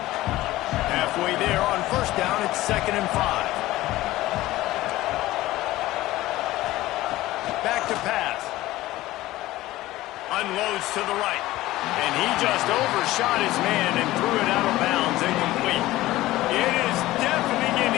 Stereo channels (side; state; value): right; quieter; 16.9 dB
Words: Halfway there on first down, it's 2nd and 5. Back to pass. Unloads to the right. And he just overshot his man and threw it out of bounds, incomplete. It is deafening in